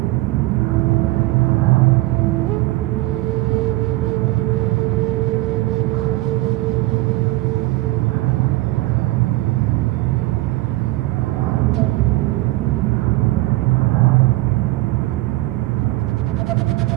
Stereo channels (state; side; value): quieter; left; 18.7 dB